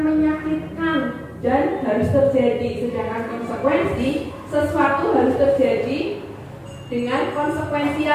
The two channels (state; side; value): identical; both; correlation 1.00